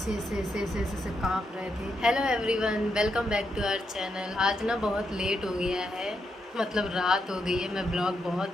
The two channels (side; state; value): both; normal; correlation 0.82